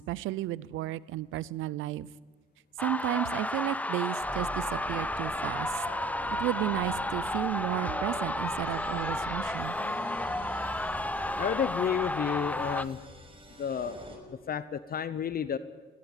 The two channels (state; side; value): normal; both; correlation 0.47